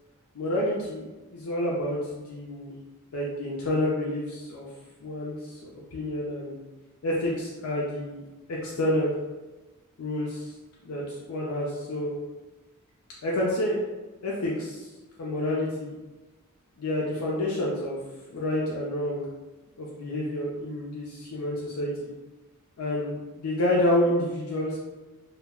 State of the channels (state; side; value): normal; both; correlation 0.17